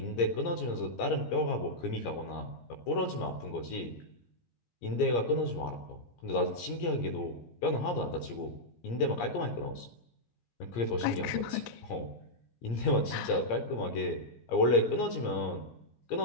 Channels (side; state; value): right; late; 17 ms